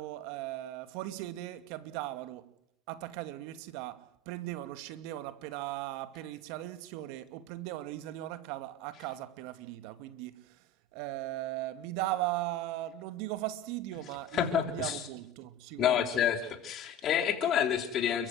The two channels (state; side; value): normal; both; correlation 0.32